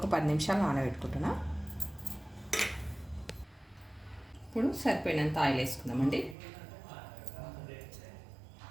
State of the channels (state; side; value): drops out; left; at 6.4 s